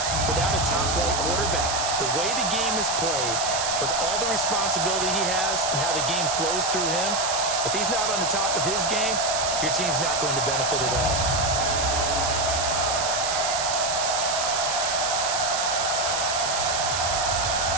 without a top-flight quarterback. The way the game is played, with all the responsibility he has and how the game flows through him, if he's not on the top of his game, your team's not going to benefit at all.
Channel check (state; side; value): noise; right; hiss, 1 dB below the sound